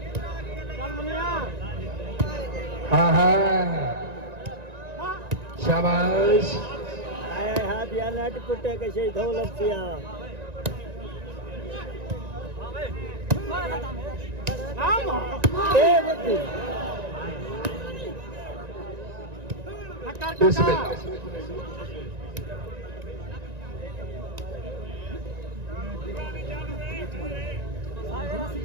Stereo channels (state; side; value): late; left; 1.9 ms